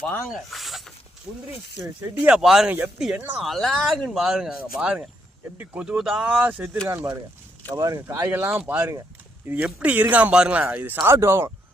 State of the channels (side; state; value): both; normal; correlation 0.75